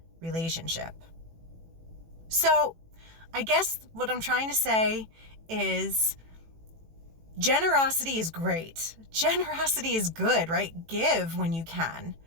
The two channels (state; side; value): late; left; 18 ms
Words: relationship. So I guess what I'm trying to say is generosity is great. Generosity is good, right? Give when you can.